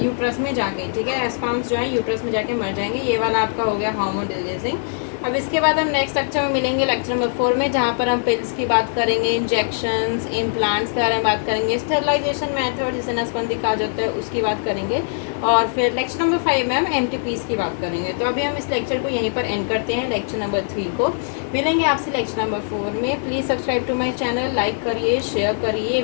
यूट्रस में जाके, ठीक है, स्पर्म्स जो है यूट्रस में जाके मर जाएंगे। ये वाला आपका हो गया हार्मोन रिलीजिंग। अब इसके बाद हम नेक्स्ट लेक्चर में मिलेंगे, लेक्चर नंबर 4 में, जहाँ पर हम पिल्स की बात करेंगे, इंजेक्शंस, इम्प्लांट्स के बारे में बात करेंगे, स्टेरिलाइजेशन मेथड जिसे नसबंदी कहा जाता है उसकी बात करेंगे, और फिर लेक्चर नंबर 5 में हम MTPs की बात करेंगे। तो अभी हम इस लेक्चर को यहीं पर एंड करते हैं, लेक्चर नंबर 3 को। मिलेंगे आपसे लेक्चर नंबर 4 में। Please subscribe to my channel, like करिए, शेयर करिए,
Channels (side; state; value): right; silent; digital silence